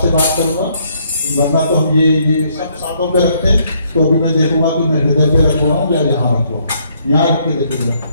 से बात करूंगा, वरना तो हम ये सब सातों पे रखते हैं। तो अभी मैं देखूंगा कि मैं हृदय पे रख रहा हूँ या यहाँ रख रहा हूँ, यहाँ रख के देखूंगा,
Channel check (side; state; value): both; inverted; correlation -0.69